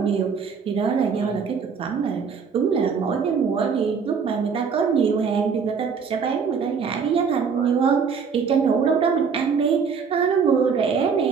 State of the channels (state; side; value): quieter; left; 6.0 dB